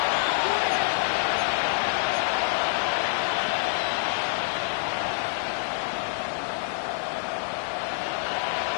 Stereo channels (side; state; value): right; silent; 60 dB below the other